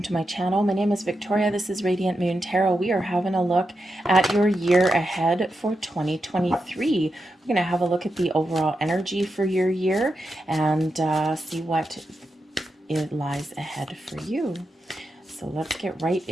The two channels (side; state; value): both; normal; correlation 0.87